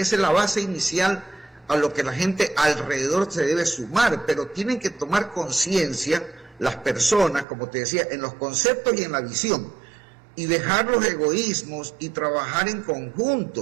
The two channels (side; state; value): left; drops out; at 7.5 s